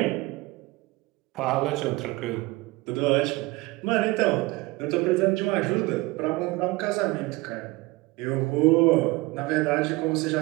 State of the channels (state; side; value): quieter; left; 22.0 dB